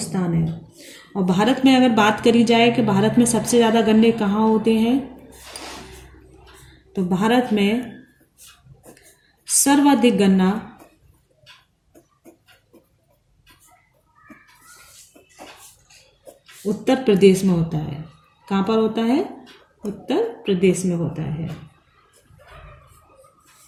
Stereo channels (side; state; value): both; identical; correlation 1.00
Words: है। और भारत में अगर बात करी जाए कि भारत में सबसे ज़्यादा गन्ने कहाँ होते हैं, तो भारत में सर्वाधिक गन्ना उत्तर प्रदेश में होता है। कहाँ पर होता है? उत्तर प्रदेश में होता है।